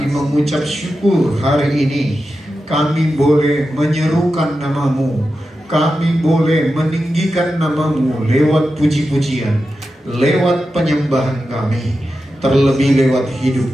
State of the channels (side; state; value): both; normal; correlation 0.91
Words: mengucap syukur hari ini kami boleh menyerukan nama-Mu, kami boleh meninggikan nama-Mu lewat puji-pujian, lewat penyembahan kami, terlebih lewat